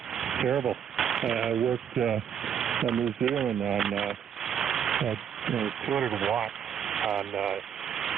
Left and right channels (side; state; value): left; quieter; 8.4 dB